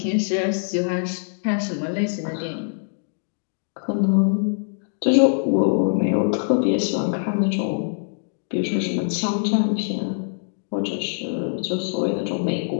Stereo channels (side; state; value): right; silent; digital silence